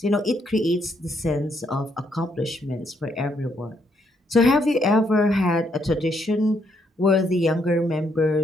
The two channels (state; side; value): normal; both; correlation 0.74